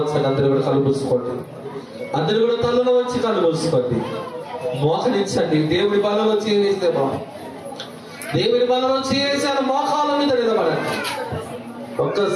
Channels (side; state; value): both; identical; correlation 1.00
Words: అందరూ కూడా కలుపుకోండి. అందరూ కూడా తలలో వచ్చి కలుపుకోండి. మోకరించండి. దేవుడి బలంలో చేవేస్తే దేవుడి బలంలో చేవేసాను. మోకాల మీద నిలబడండి.